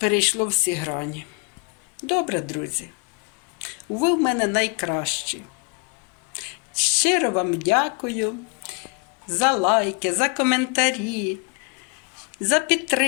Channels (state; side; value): quieter; right; 34.3 dB